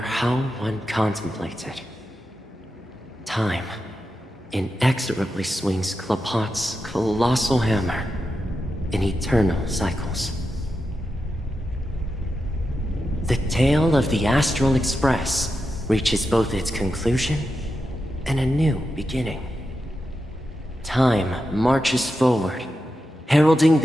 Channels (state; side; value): normal; both; correlation 0.89